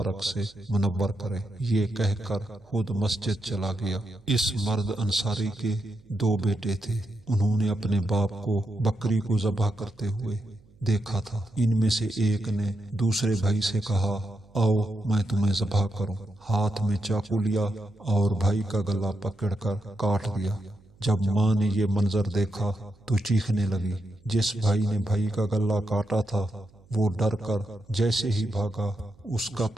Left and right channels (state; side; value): noise; right; hum, 29 dB below the sound